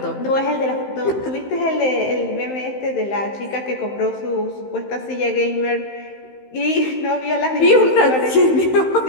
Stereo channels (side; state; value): right; late; 15 ms